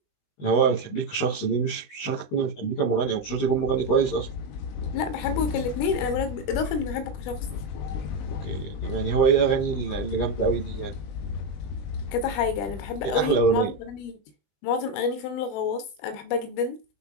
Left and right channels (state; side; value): late; right; 20 ms